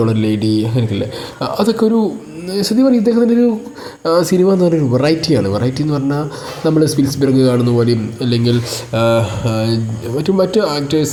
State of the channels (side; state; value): both; identical; correlation 1.00